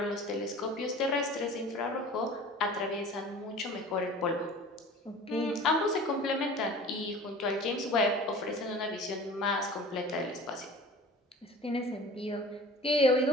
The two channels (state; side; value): normal; both; correlation 0.42